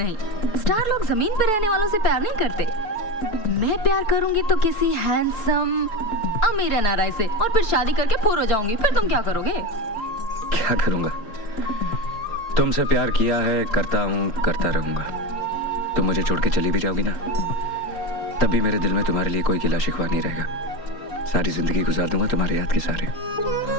स्टार लोग जमीन पर रहने वालों से प्यार नहीं करते। मैं प्यार करूंगी तो किसी हैंडसम अमीर एनआरआई से, और फिर शादी करके फूर हो जाऊंगी। फिर तुम क्या करोगे? क्या करूंगा? तुमसे प्यार किया है, करता हूँ, करता रहूंगा। तुम मुझे छोड़ के चली भी जाओगी ना, तब भी मेरे दिल में तुम्हारे लिए कोई गिला शिकवा नहीं रहेगा। सारी जिंदगी गुजार दूंगा तुम्हारे याद के सारे।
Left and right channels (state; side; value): late; right; 4.6 ms